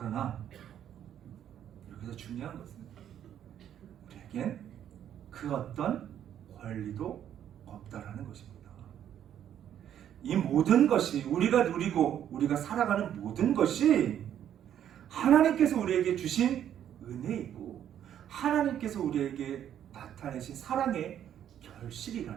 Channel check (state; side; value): quieter; left; 10.1 dB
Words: 여기서 중요한 것은 우리에겐 그 어떤 권리도 없다라는 것입니다. 이 모든 것이 우리가 누리고 우리가 살아가는 모든 것이 하나님께서 우리에게 주신 은혜이고 하나님께서 우리에게 나타내신 사랑의